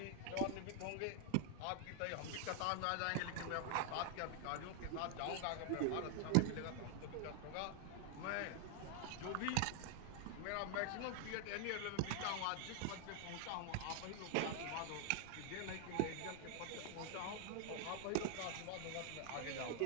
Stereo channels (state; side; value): different; both; correlation 0.00